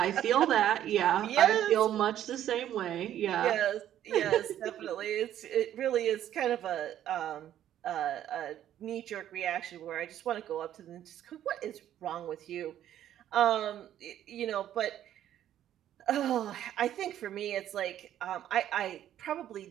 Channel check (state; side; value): quieter; left; 11.4 dB